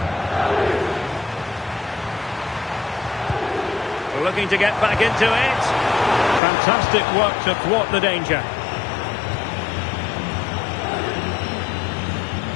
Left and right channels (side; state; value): right; drops out; at 6.4 s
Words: Looking to get back into it. Fantastic work to thwart the danger.